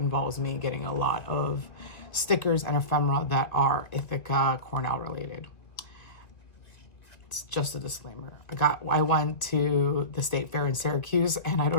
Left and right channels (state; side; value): late; right; 1.9 ms